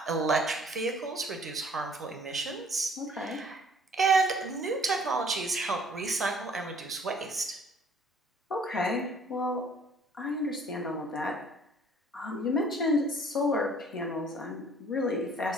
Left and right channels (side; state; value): both; normal; correlation 0.56